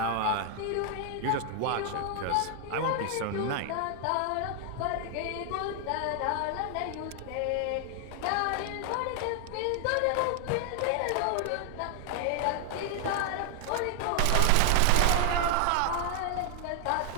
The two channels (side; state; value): both; different; correlation 0.00